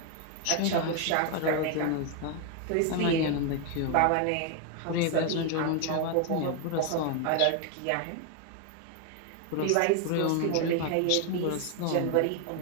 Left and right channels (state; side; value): different; both; correlation 0.01